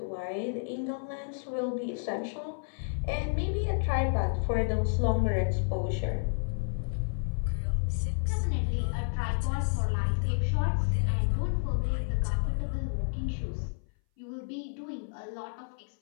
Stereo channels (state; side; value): silent; right; 57 dB below the other